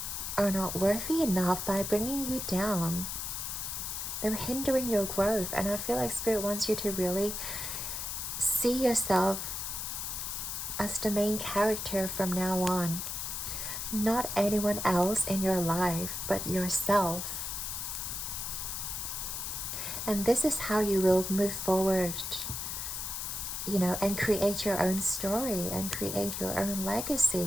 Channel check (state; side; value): noise; left; hiss, 4 dB below the sound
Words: are not worthy enough by bringing you down. They're hindering your growth, and I feel like Spirit wants you to really see yourself as the main character from now on. Not anyone else in your life, but yourself. And this is how you will move forward, you know, and create your own story and create your own